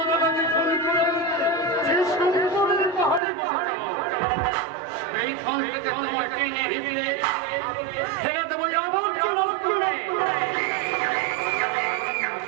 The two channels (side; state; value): left; drops out; at 3.2 s